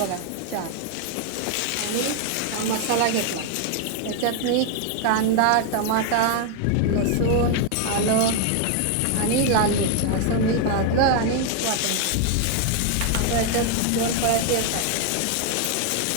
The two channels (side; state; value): both; different; correlation 0.01